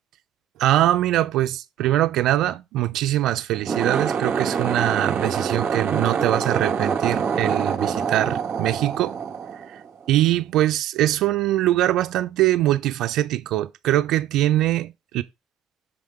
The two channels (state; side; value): quieter; left; 11.3 dB